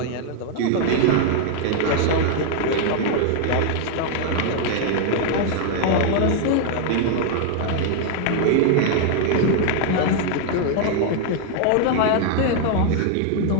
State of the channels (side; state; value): both; different; correlation 0.00